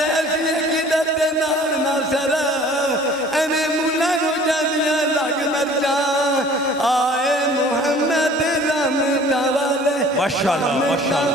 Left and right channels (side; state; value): both; normal; correlation 0.50